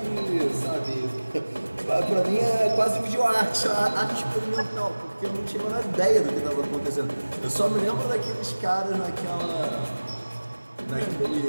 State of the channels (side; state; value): both; inverted; correlation -1.00